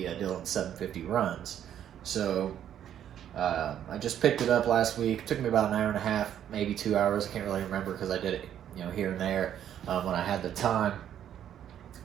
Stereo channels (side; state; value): left; quieter; 10.2 dB